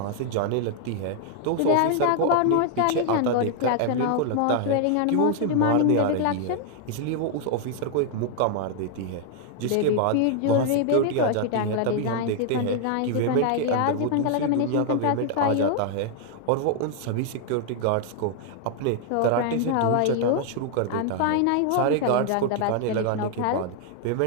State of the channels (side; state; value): both; different; correlation 0.00